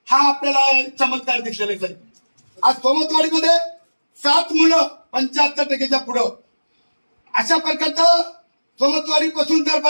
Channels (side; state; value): both; inverted; correlation -1.00